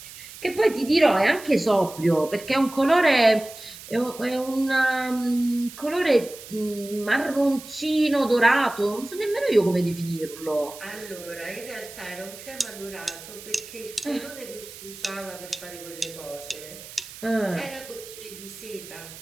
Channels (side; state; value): right; noise; hiss, 15 dB below the sound